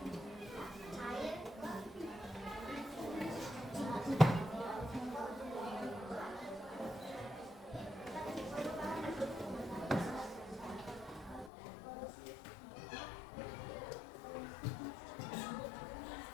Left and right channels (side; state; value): right; drops out; at 11.5 s